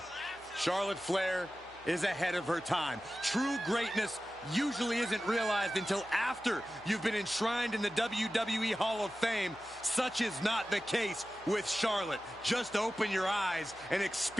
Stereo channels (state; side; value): noise; right; hum, 24 dB below the sound